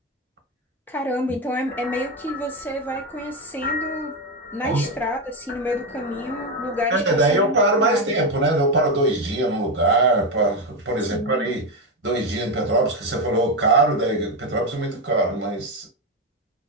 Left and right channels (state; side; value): normal; both; correlation 0.11